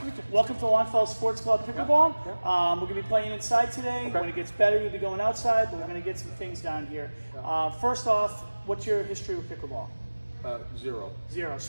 meet you. Welcome to Longfellow Sports Club Pickleball. Yeah. We're going to be playing inside today. Okay. When it gets better, we'll be going outside, but we're going to get some things down here. First off, what's your history with pickleball? Zero. Zero.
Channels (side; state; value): both; inverted; correlation -1.00